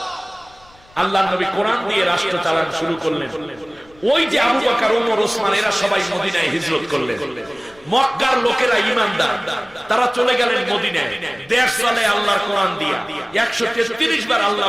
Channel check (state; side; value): noise; left; rumble, 28 dB below the sound